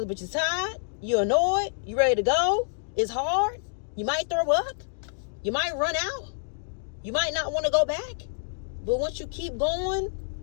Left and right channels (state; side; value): silent; right; digital silence